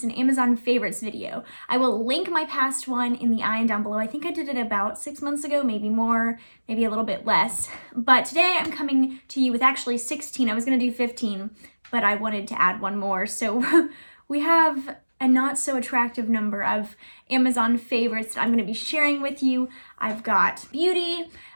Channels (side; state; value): both; inverted; correlation -1.00